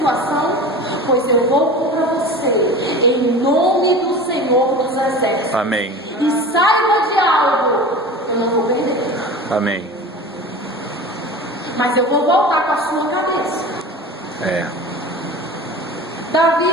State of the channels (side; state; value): both; normal; correlation 0.34